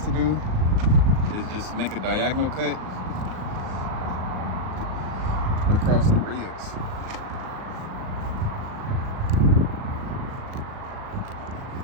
to do is just make a diagonal cut across the ribs.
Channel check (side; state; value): left; late; 38 ms